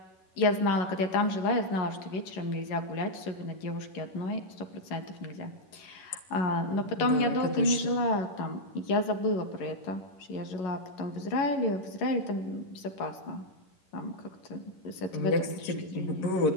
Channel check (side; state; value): right; late; 11 ms